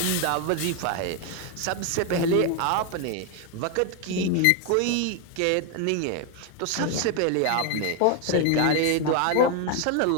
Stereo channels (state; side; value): different; both; correlation 0.01